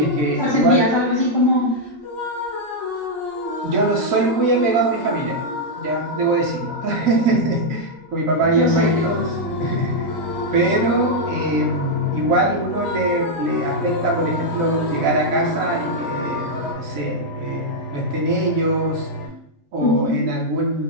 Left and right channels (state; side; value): normal; both; correlation -0.03